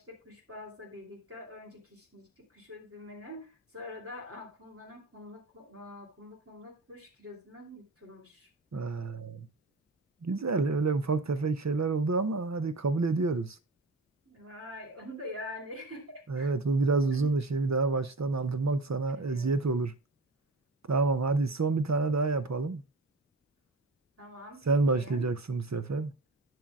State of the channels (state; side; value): quieter; left; 3.1 dB